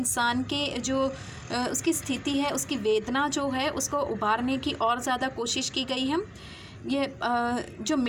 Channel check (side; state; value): both; identical; correlation 1.00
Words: के जो उसकी स्थिति है, उसकी वेदना जो है, उसको उभारने की और ज़्यादा कोशिश की गई है। ये जो